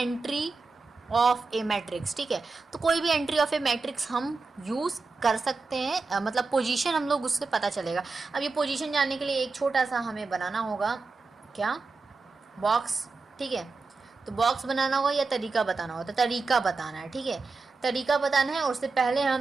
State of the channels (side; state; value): left; quieter; 4.1 dB